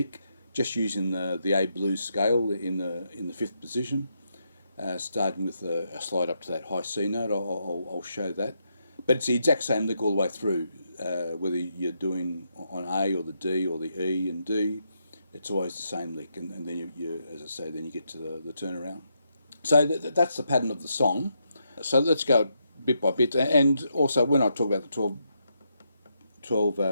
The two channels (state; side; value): inverted; both; correlation -0.80